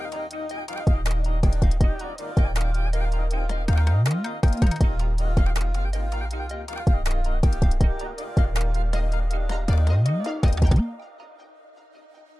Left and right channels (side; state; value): both; normal; correlation 0.97